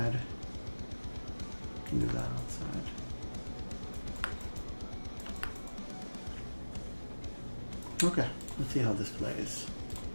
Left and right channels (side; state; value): both; inverted; correlation -1.00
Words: We can do that outside. Okay, let's see how this plays.